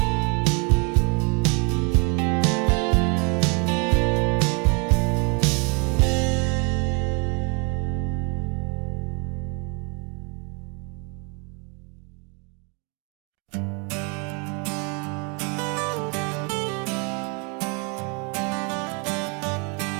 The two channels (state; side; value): quieter; left; 33.4 dB